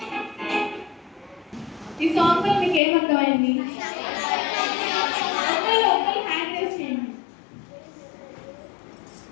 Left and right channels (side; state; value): right; drops out; at 2.8 s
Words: ఈ సాంగ్ లో మీకు ఏమర్థమైంది? ఒకరు హ్యాండ్ రేస్ చేయండి.